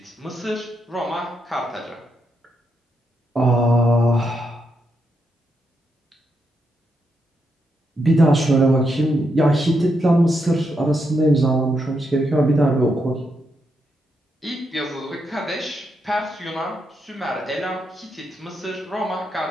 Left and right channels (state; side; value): normal; both; correlation 0.81